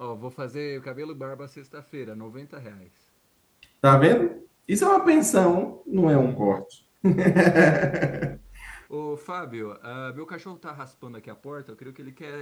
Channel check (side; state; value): both; identical; correlation 1.00